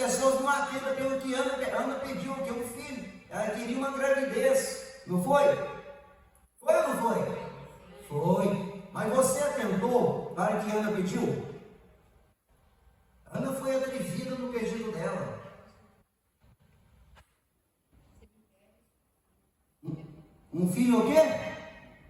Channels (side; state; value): both; identical; correlation 1.00